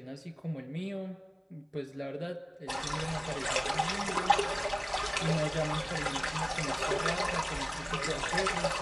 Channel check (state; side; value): identical; both; correlation 1.00